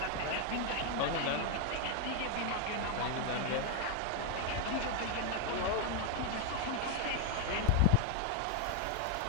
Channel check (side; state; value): both; different; correlation 0.01